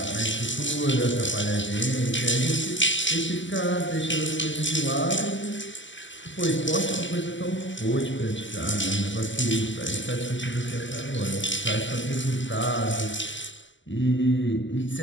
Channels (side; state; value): right; late; 0.54 ms